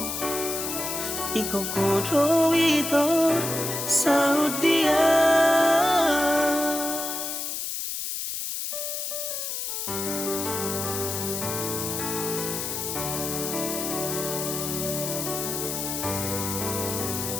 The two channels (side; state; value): left; noise; hiss, 3 dB below the sound